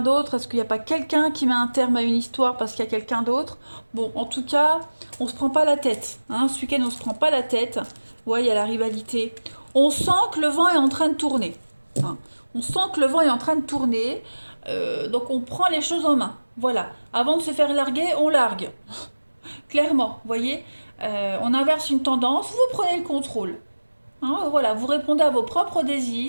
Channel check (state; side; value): inverted; both; correlation -1.00